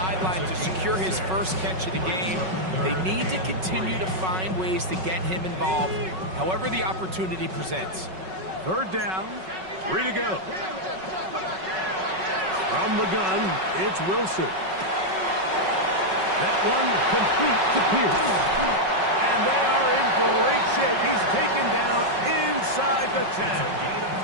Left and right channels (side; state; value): left; late; 5.4 ms